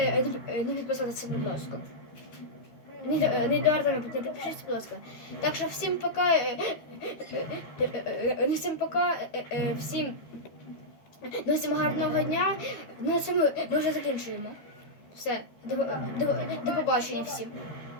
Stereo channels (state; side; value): late; right; 13 ms